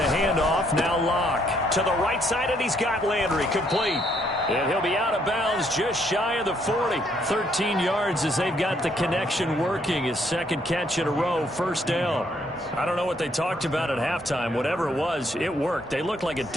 handoff, now Locke. To the right side, and he's got Landry, complete. And he'll be out of bounds just shy of the 40. 13 yards as they've got the connection working. His second catch in a row, 1st down. I don't know what they talked about at halftime. Whatever it was, it worked. They look like a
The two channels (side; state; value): both; normal; correlation 0.70